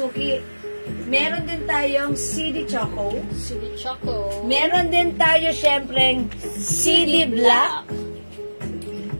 Meron din tayong CD choco. CD Choco. Meron din tayo syempreng CD black.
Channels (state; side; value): inverted; both; correlation -1.00